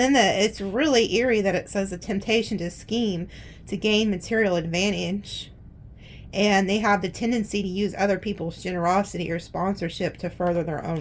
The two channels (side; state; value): both; identical; correlation 1.00